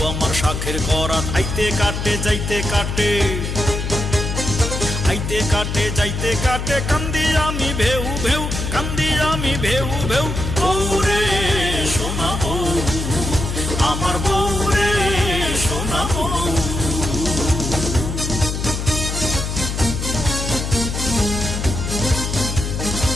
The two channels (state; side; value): noise; left; hum, 3 dB below the sound